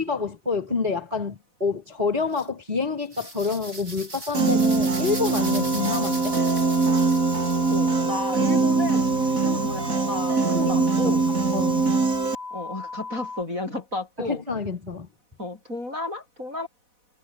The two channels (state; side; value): late; left; 4.1 ms